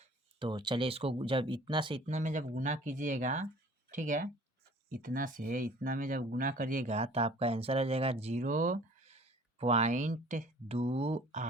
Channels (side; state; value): both; normal; correlation 0.50